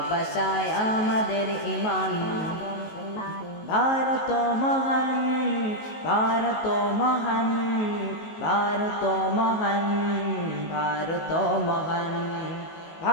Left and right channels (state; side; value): late; right; 19 ms